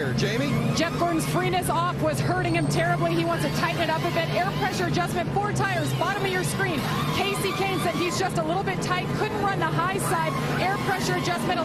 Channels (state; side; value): identical; both; correlation 1.00